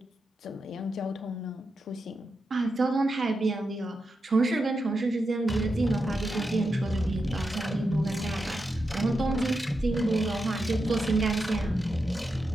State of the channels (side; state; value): both; normal; correlation 0.88